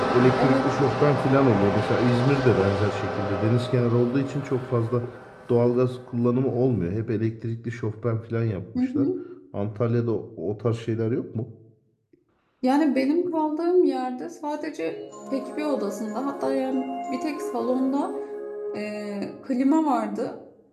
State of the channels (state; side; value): identical; both; correlation 1.00